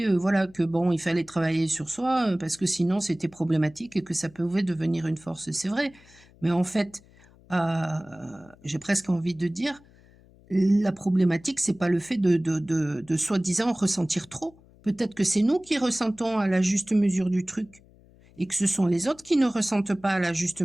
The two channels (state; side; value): noise; left; hum, 27 dB below the sound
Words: voilà que bon, il fallait travailler sur soi parce que sinon c'était problématique et que ça pouvait devenir une force. C'est vrai. Mais en fait, j'ai presque envie de dire, la problématique, c'est pas le fait de soi-disant ressentir trop. Peut-être que c'est nous qui ressentons à la juste mesure du truc et que ce sont les autres qui ne ressentent pas à la juste